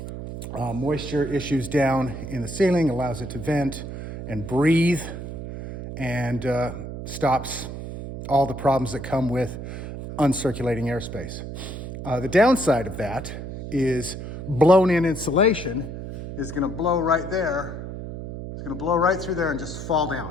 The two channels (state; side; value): noise; right; hum, 8 dB below the sound